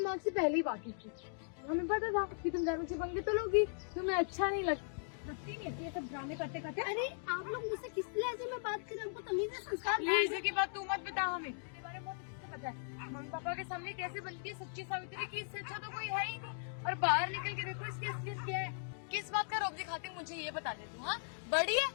से पहले ही बात की थी। हमें पता था कि तुम ड्रामे से पंगे तो लोगी, तुम्हें अच्छा नहीं लगती नहीं है ये सब ड्रामे करते करते। अरे आप लोग मुझसे किस लहजे में बात करें? हमको तमीज है, संस्कार लहजे की बात तू मत बता, हमें तेरे बारे में बहुत अच्छे से पता है। मम्मी पापा के सामने कैसे बनती है सच्ची सावित्री की, इससे अच्छा तो कोई है ही नहीं। और बाहर निकल के देखो इसकी असलियत क्या है। किस बात का रोब दिखाती मुझे ये बता दे तू। हाँ बड़ी है,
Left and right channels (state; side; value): silent; right; digital silence